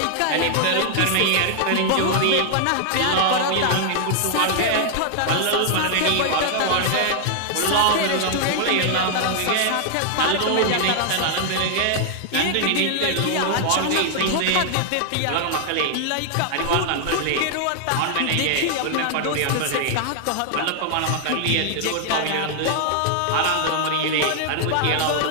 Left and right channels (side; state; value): both; different; correlation 0.00